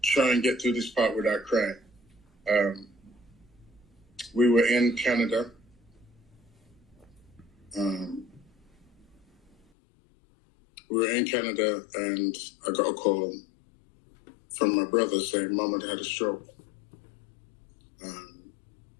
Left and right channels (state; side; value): drops out; right; at 9.6 s